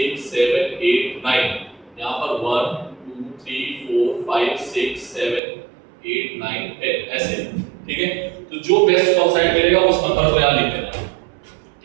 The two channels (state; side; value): drops out; left; at 5.4 s